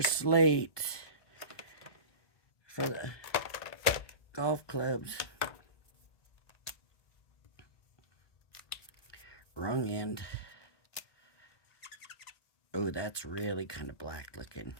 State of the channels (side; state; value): right; late; 1.2 ms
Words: slate for the golf clubs. Wrong end. Oh, that's really kind of black looking.